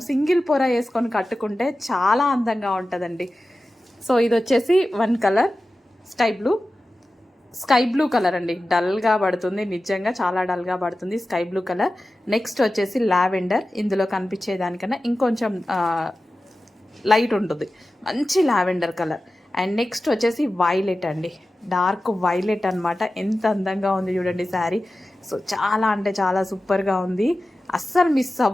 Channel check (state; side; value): normal; both; correlation 0.94